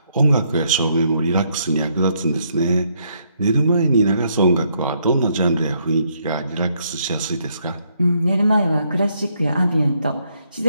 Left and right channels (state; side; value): inverted; both; correlation -0.73